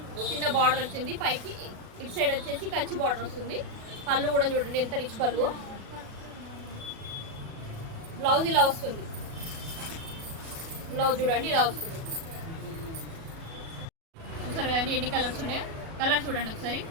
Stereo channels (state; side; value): late; left; 37 ms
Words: చిన్న బార్డర్ వచ్చింది. పైకి ఇటు సైడ్ వచ్చేసి కంచి బార్డర్ వస్తుంది. పళ్ళు కూడా చూడండి ఎంత రిచ్ పళ్ళు. బ్లౌజ్ ఇలా వస్తుంది. బ్లౌజ్ చూడండి ఇలా వస్తుంది. చూసారు కదండి ఎన్ని కలర్స్ ఉన్నాయో. కలర్ చూడండి ఒకసారి